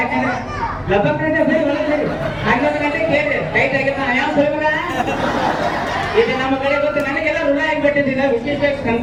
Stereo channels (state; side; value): identical; both; correlation 1.00